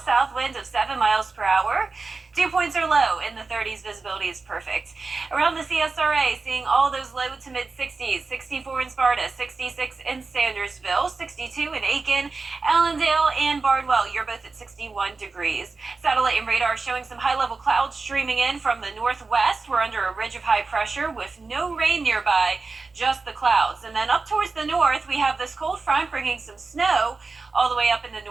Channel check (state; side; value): quieter; left; 4.0 dB